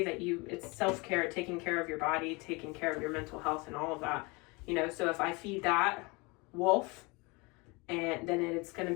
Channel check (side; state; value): right; quieter; 27.0 dB